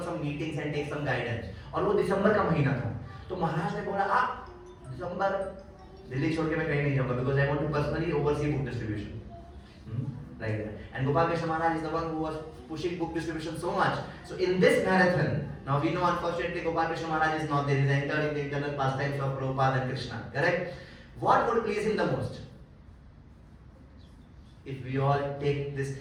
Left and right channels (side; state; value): both; identical; correlation 1.00